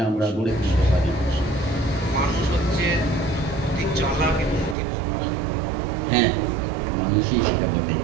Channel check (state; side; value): drops out; left; at 4.8 s